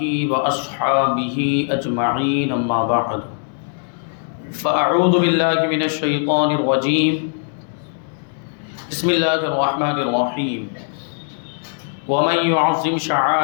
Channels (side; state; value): right; silent; 66 dB below the other